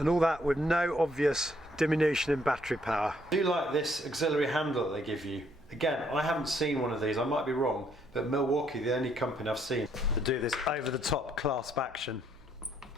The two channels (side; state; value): right; noise; hum, 26 dB below the sound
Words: all that with no obvious diminution in battery power. I do like this auxiliary handle that they give you. Again, I haven't seen one of these, I might be wrong, but Milwaukee, the only company I've seen to do this over-the-top clasp action.